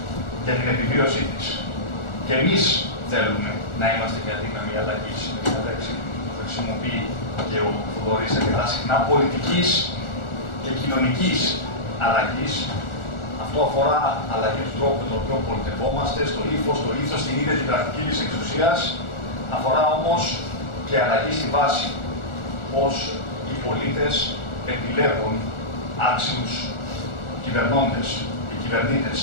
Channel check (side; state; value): right; late; 1.4 ms